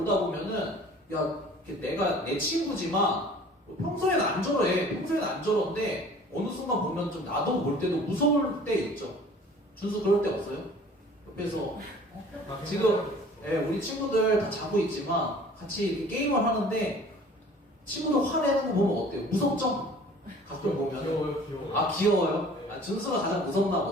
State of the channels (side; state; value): both; normal; correlation 0.49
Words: 보면은 야 내가 내 친구지만 평소에는 안 저래. 평소에는 안 저런데 어느 순간 보면 좀 나도 볼 때도 무서울 때 있죠. 준수 그럴 때 없어요? 옆에서 지금 우리 친구들 다 자고 있지만 같이 이렇게 게임을 하는데 친구들 화내는 거 보면 어때요? 무섭죠? 가끔 보면 귀여워요. 아 귀여워요? 아, 준수가 가장 무섭나